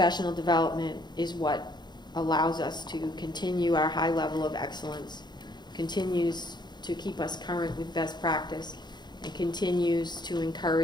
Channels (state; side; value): late; right; 0.21 ms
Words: development is what allows us to continue our high level of excellence, continues to keep us current with best practice, and continues to